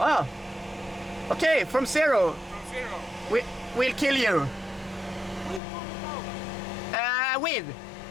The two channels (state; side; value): drops out; right; at 5.6 s